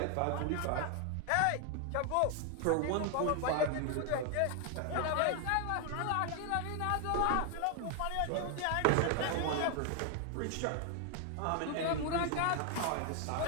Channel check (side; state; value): both; different; correlation 0.00